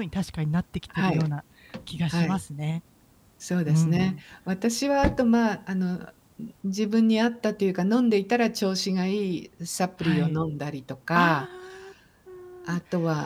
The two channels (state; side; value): identical; both; correlation 1.00